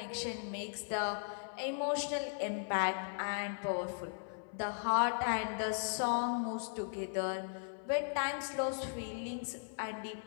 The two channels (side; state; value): right; silent; 53 dB below the other